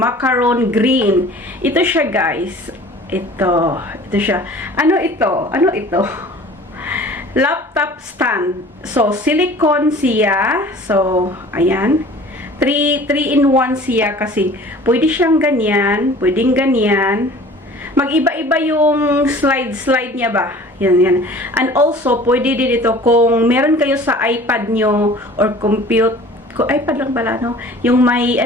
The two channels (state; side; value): normal; both; correlation 0.46